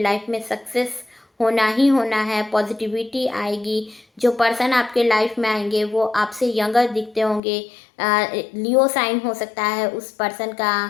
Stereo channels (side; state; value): right; drops out; at 7.4 s